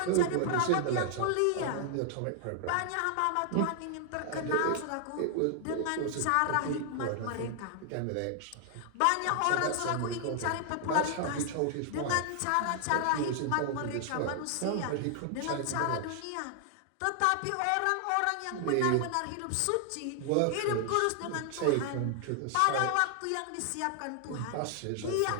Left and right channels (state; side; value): different; both; correlation 0.00